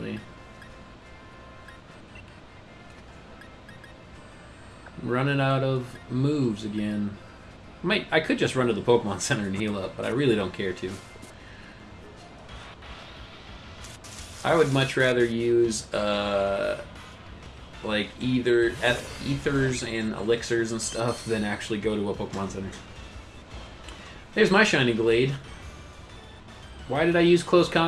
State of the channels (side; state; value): both; identical; correlation 1.00